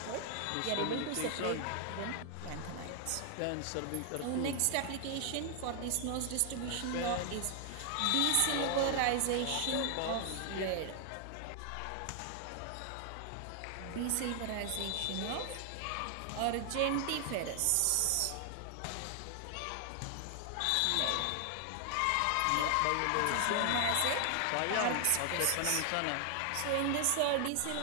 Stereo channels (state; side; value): different; both; correlation 0.00